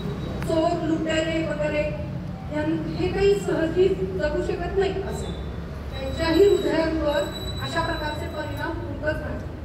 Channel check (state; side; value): identical; both; correlation 1.00